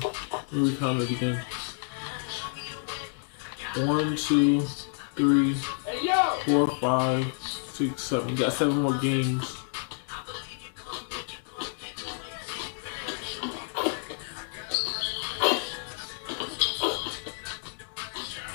Let me count it again. 1, 2, 3, 4, 5, 6, 7. We got 7 more games.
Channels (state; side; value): silent; right; 58 dB below the other